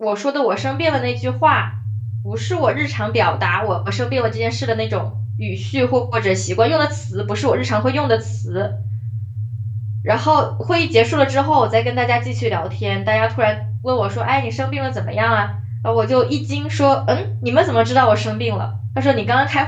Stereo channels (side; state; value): both; identical; correlation 1.00